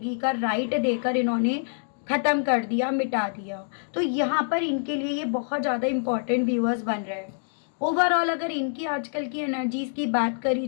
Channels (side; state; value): right; silent; digital silence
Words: का राइट देकर इन्होंने ख़त्म कर दिया, मिटा दिया। तो यहाँ पर इनके लिए ये बहुत ज़्यादा इम्पॉर्टेंट व्यूअर्स बन रहे हैं। ओवरऑल अगर इनकी आजकल की एनर्जीज़ की बात करी